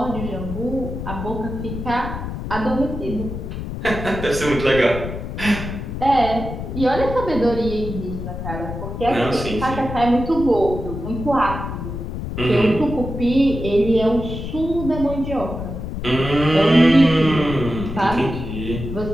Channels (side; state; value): left; noise; rumble, 6 dB below the sound